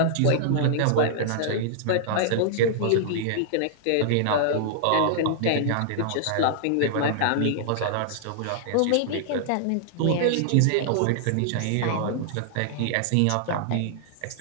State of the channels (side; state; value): both; different; correlation -0.01